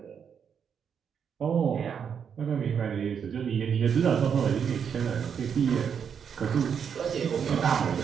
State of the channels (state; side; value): quieter; left; 7.3 dB